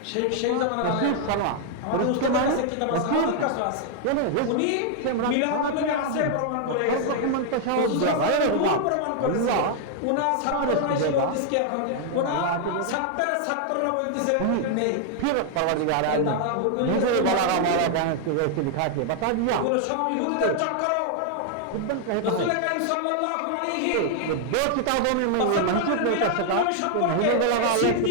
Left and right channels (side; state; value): both; different; correlation 0.00